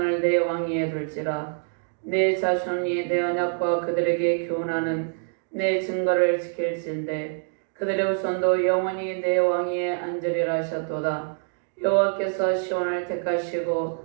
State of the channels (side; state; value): left; silent; digital silence